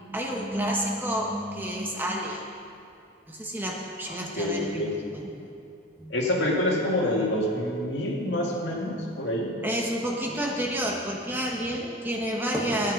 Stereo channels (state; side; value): normal; both; correlation 0.34